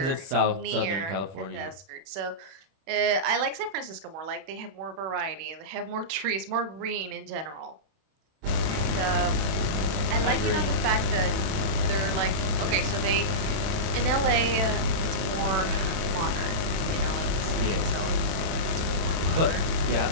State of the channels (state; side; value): late; left; 30 ms